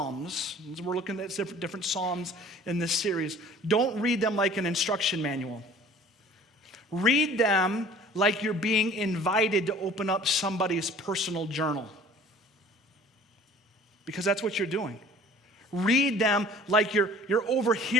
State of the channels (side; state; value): both; normal; correlation 0.49